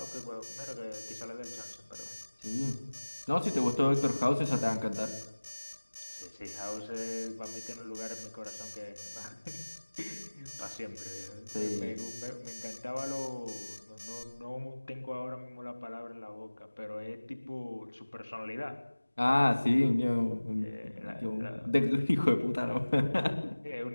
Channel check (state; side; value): inverted; both; correlation -1.00